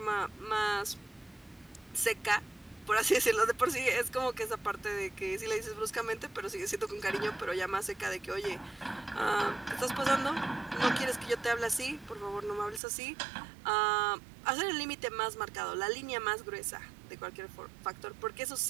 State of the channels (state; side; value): drops out; left; at 12.8 s